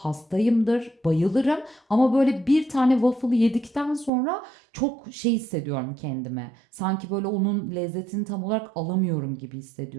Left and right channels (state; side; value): drops out; left; at 4.1 s